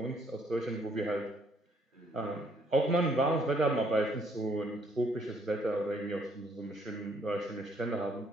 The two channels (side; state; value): both; normal; correlation 0.67